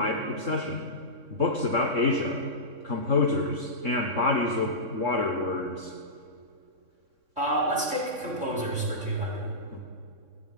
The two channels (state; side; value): late; left; 3.6 ms